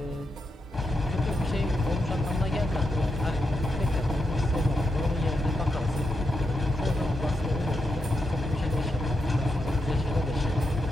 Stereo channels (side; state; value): both; normal; correlation 0.85